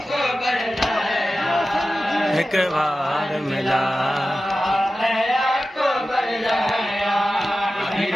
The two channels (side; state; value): both; normal; correlation 0.94